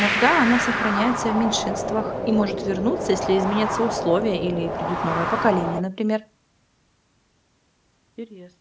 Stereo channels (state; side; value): identical; both; correlation 1.00